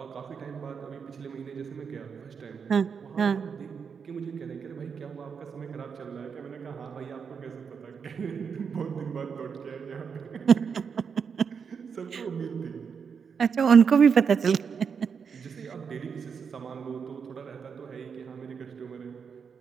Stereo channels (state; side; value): quieter; left; 6.3 dB